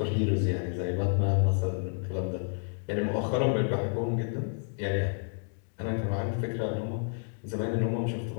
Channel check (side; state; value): right; silent; 58 dB below the other